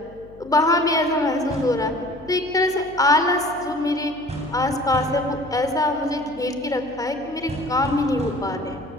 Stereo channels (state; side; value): noise; left; hum, 22 dB below the sound